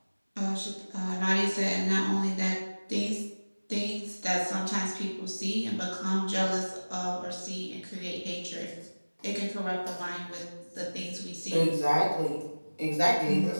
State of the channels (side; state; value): both; inverted; correlation -1.00